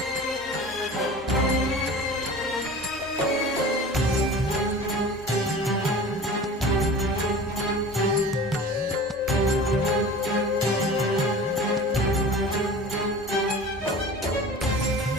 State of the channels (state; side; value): normal; both; correlation 0.38